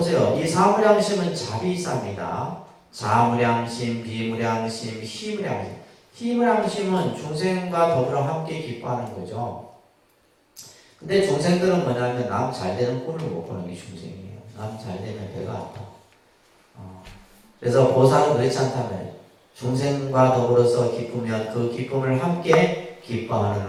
이 사무량심은 자비사입니다. 자무량심, 비무량심, 희무량심. 희무량심은 중생과 더불어 함께 기뻐하는 거죠. 근데 중생들은 뭐냐면 남 잘되는 꼴을 못 보는 게 중생이에요. 남 잘되면 배가 아파. 그래서 보살은 그렇지 않다면 중생과 더불어서 기쁘면 그 기쁨을 함께 기뻐하는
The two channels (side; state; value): both; identical; correlation 1.00